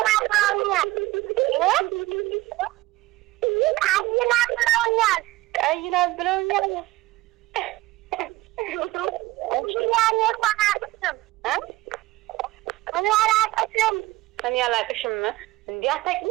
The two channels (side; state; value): left; quieter; 18.8 dB